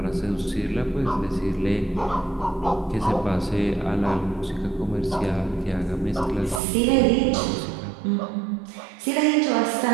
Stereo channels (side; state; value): left; drops out; at 6.6 s